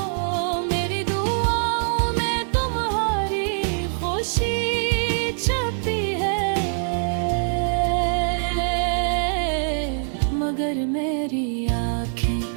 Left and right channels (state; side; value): silent; left; 60 dB below the other